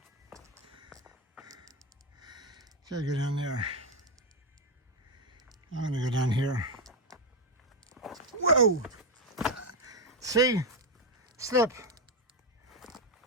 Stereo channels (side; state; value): both; normal; correlation 0.06